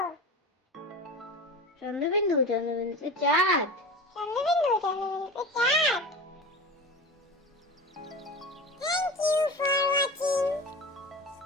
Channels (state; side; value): normal; both; correlation 0.30